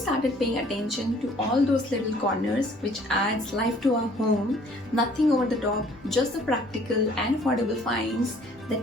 paying attention to all those little corners which adds life to our home. Nothing over the top, just the practical and affordable finds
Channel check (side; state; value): both; normal; correlation 0.57